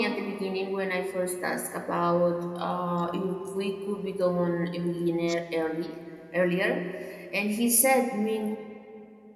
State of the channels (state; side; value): identical; both; correlation 1.00